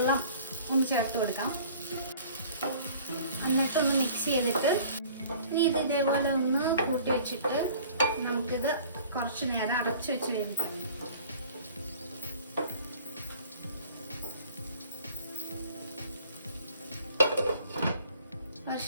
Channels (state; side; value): inverted; both; correlation -0.49